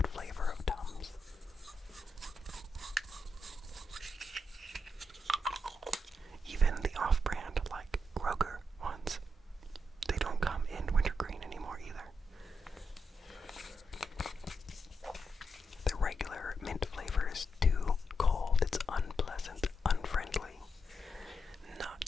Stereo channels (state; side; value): normal; both; correlation 0.83